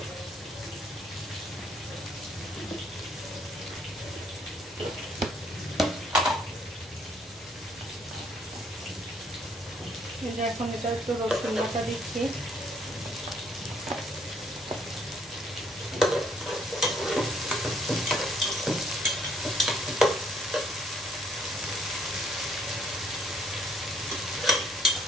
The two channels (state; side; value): normal; both; correlation 0.67